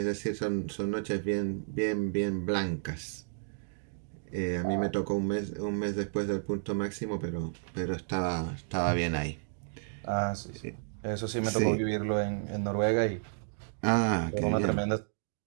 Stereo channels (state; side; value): silent; left; digital silence